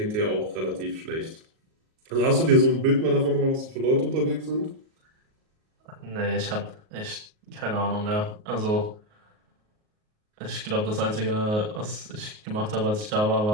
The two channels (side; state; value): left; late; 38 ms